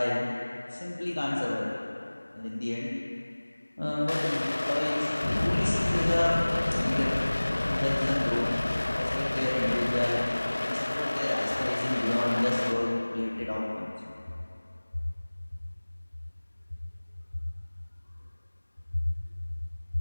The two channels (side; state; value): both; inverted; correlation -1.00